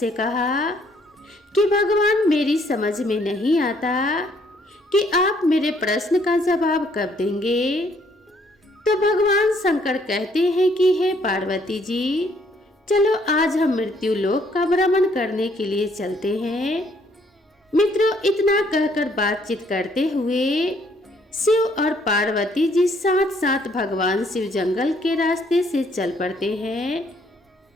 कहा कि भगवान, मेरी समझ में नहीं आता कि आप मेरे प्रश्न का जवाब कब देंगे। तो भगवान शंकर कहते हैं कि हे पार्वती जी, चलो आज हम मृत्यु लोक का भ्रमण करने के लिए चलते हैं। मित्रों, इतना कहकर बातचीत करते हुए शिव और पार्वती जी साथ साथ भगवान शिव जंगल के रास्ते से चल पड़ते हैं,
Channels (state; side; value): normal; both; correlation 0.66